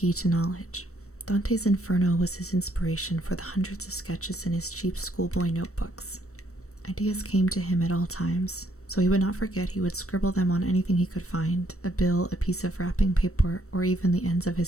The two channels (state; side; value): late; right; 0.64 ms